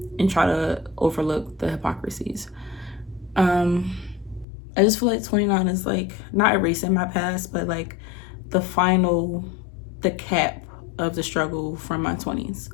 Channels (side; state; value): right; drops out; at 4.5 s